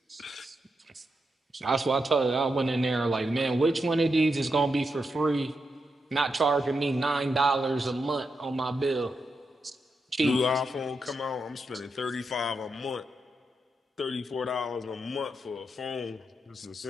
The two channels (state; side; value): normal; both; correlation 0.85